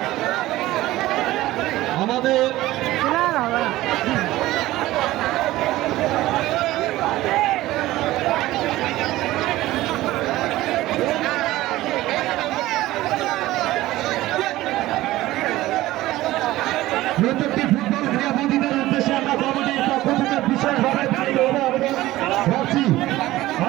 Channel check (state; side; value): quieter; left; 16.7 dB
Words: আমাদের প্রত্যেকটি ফুটবল ক্রীড়াবিদের উদ্দেশ্যে আমরা কমিটির পক্ষ থেকে বিশেষভাবে ভাবছি,